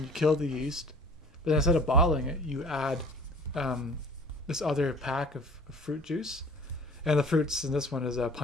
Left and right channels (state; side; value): normal; both; correlation 0.48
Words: you kill the yeast. But then instead of bottling it, you add this other pack of fruit juice. And the fruits in this one is